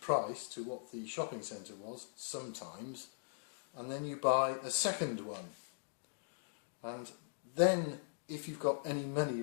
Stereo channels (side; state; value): right; silent; digital silence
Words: to what the shopping centre was sometimes, and then you buy a second one. And then if you've got any money